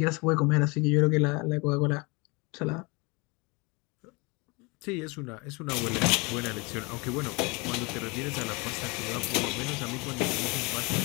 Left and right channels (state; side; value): quieter; right; 27.8 dB